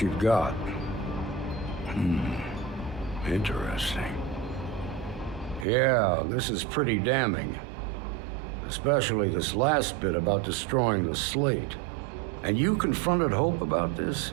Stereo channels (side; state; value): left; drops out; at 5.7 s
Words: you've got. Interesting. Yeah, this is pretty damning. Especially this last bit about destroying the slate. And you confronted Hope about this?